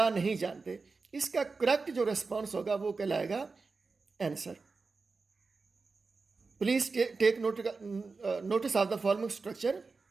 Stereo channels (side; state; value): left; quieter; 4.3 dB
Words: नहीं जानते. इसका करेक्ट जो रिस्पॉन्स होगा वो कहलाएगा answer. Please take notice of the following structure.